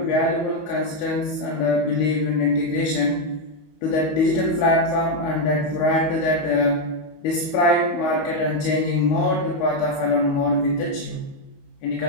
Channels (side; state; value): right; late; 19 ms